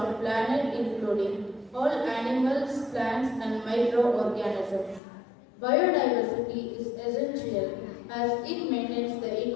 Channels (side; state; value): right; drops out; at 5.0 s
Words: planet, including all animals, plants and microorganisms. Biodiversity is essential as it maintains the